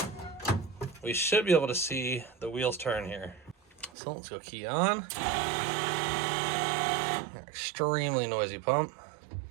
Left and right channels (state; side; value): drops out; left; at 3.9 s